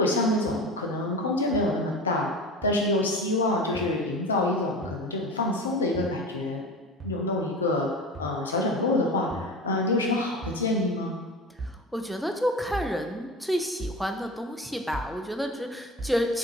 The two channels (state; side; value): normal; both; correlation 0.31